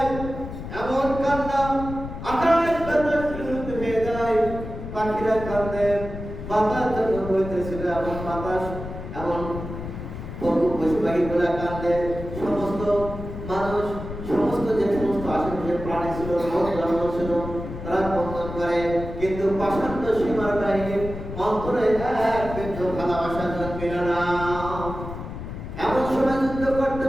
এমন কান্না আকাশ বাতাস বিলুপ্ত হয়ে যায়। পাখিরা কাঁদে, বাতাস যখন বইতেছিল এমন বাতাস, এমন পশু পাখিগুলা কাঁদে। সমস্ত মানুষ, সমস্ত যে সমস্ত আশেপাশের প্রাণী ছিল, জন্ম ছিল, তারা কন্দন করে। কিন্তু পাষাণ্ড সীমার বাহিনীর অন্তরে এক বিন্দু ভালোবাসা জন্মিল না। এমন সময় যুদ্ধ করতে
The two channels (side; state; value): left; noise; rumble, 9 dB below the sound